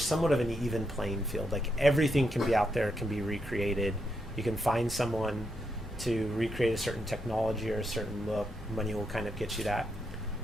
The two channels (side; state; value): both; normal; correlation 0.81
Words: somewhat of an even playing field. Like everything can be out there, can be recreated. You can find someone to recreate a certain technology or a certain look. Money will kind of get you that.